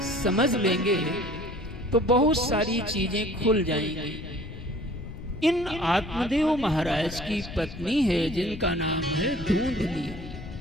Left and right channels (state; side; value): noise; left; rumble, 12 dB below the sound